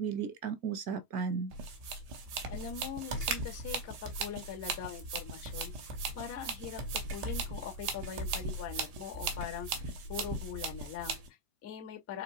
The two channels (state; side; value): late; left; 1.8 ms